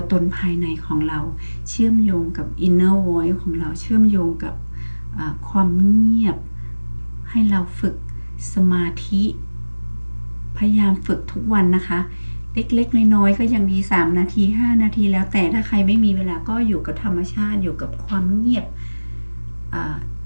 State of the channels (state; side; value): inverted; both; correlation -1.00